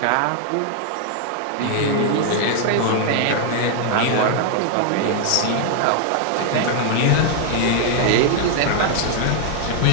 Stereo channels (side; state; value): both; different; correlation 0.00